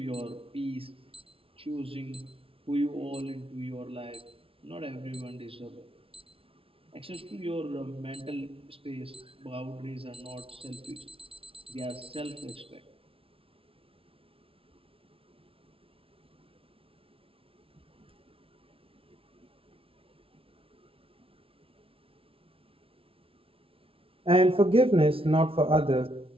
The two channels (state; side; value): late; left; 0.26 ms